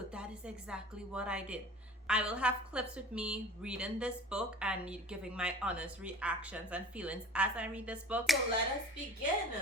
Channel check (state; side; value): normal; both; correlation 0.41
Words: is exactly what I did. I will have clips with me reading this book and giving my honest reactions and feelings as I read this book. So let us begin.